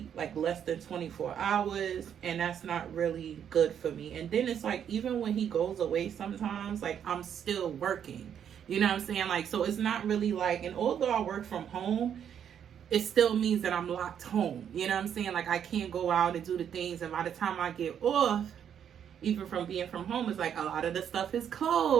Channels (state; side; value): quieter; left; 8.8 dB